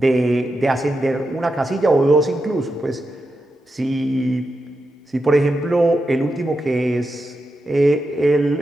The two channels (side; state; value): both; normal; correlation 0.88